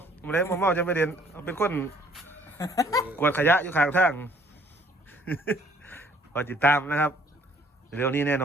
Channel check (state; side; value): normal; both; correlation 0.60